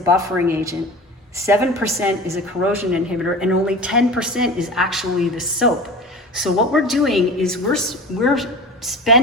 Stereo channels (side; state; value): both; normal; correlation 0.35